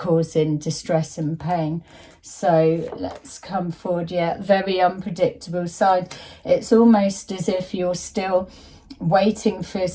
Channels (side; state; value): both; identical; correlation 1.00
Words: distress and pain. So let's come forward. Yeah, very unpredictable side. It's almost as if you're still waiting for